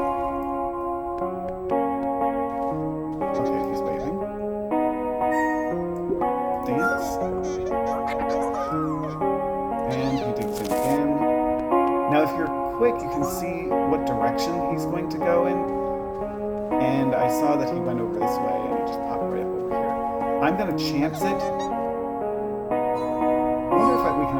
Okay, he's waving. Dance. And he digs in again. Now, if you're quick, you can see what direction he's going to go in. And I saw that he went over this way, and he just popped right up over here. I'm going to chance it. I wonder if we can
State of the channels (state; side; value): identical; both; correlation 1.00